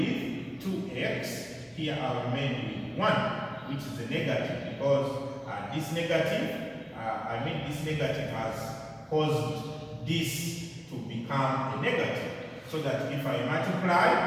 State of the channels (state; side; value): identical; both; correlation 1.00